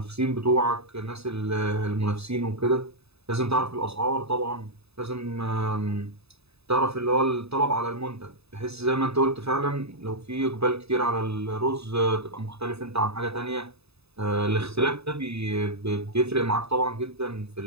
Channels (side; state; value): left; late; 0.79 ms